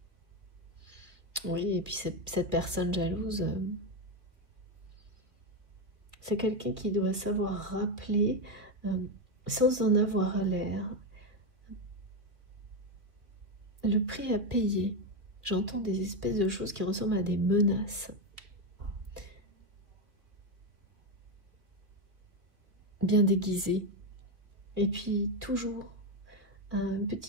Oui, et puis cette personne jalouse, c'est quelqu'un qui doit savoir rappeler, sans en avoir l'air, le prix à payer. J'entends des espèces de choses qui ressemblent à des menaces. Bien déguisées. Et puis toujours une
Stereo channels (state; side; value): late; left; 2.6 ms